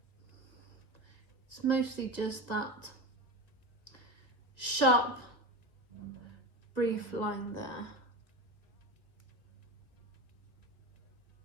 It's mostly just that sharp, brief line there.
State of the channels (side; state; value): right; late; 1.7 ms